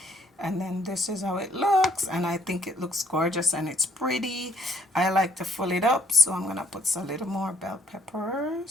And then this is how it looks, and I think it looks gorgeous and it's pretty. I like to fill it up, so I'm gonna put a little more bell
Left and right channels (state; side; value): normal; both; correlation 0.65